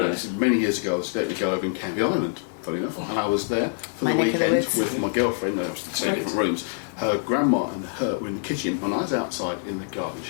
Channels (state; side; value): silent; right; digital silence